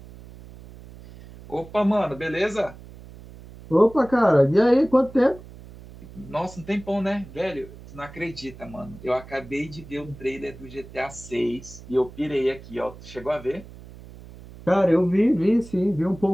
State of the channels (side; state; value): right; noise; hum, 18 dB below the sound